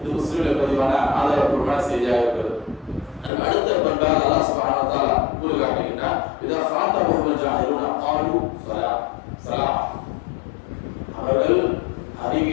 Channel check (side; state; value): right; drops out; at 3.3 s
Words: முஸ்லிமில் பதிவான ஆதாரப்பூர்வமான செய்தியாக இருக்கிறது. அடுத்த பண்பாக அல்லாஹ் சுப்ஹானஹு வ தஆலா கூறி காட்டுகின்றார், இதா ஃபாதஹுல் ஜாஹிலூன ஸாலு ஸலாம். அவர்கள்